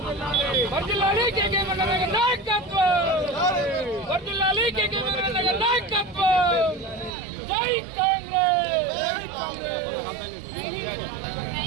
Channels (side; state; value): left; drops out; at 7.1 s